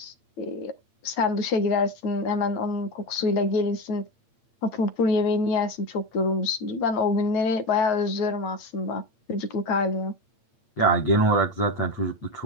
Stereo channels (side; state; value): right; late; 8.7 ms